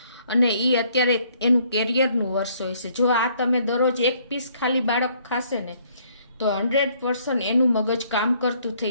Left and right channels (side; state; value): both; inverted; correlation -0.65